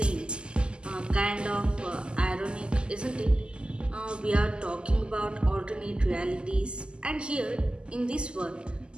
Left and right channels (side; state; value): left; late; 0.049 ms